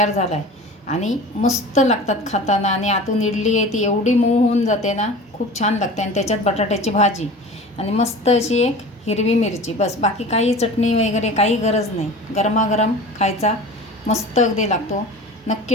झाला आहे आणि मस्त लागतात खाताना. आणि आतून इडली आहे ती एवढी मऊ होऊन जाते ना, खूप छान लागते. आणि त्याच्यात बटाट्याची भाजी आणि मस्त अशी एक हिरवी मिरची, बस. बाकी काही चटणी वगैरे काही गरज नाही. गरमागरम खायचा मस्त अगदी लागतो.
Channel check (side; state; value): both; normal; correlation 0.37